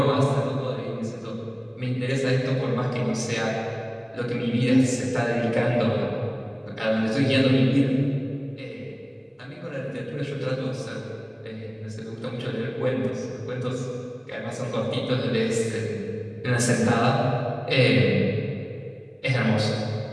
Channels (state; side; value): identical; both; correlation 1.00